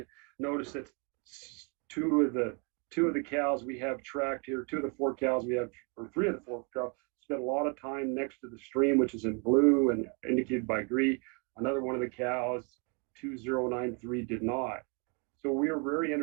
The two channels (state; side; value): quieter; left; 35.3 dB